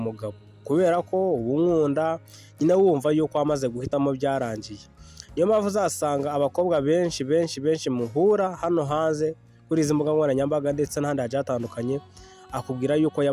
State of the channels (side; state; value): both; identical; correlation 1.00